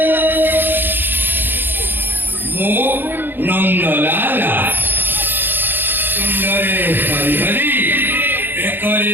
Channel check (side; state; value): left; late; 0.096 ms